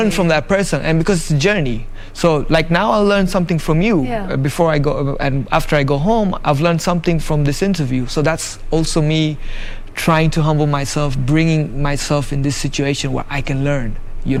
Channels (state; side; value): identical; both; correlation 1.00